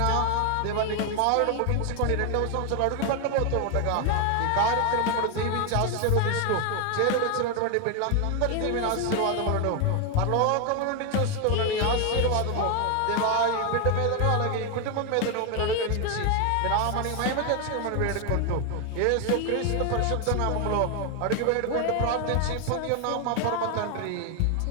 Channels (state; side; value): different; both; correlation 0.01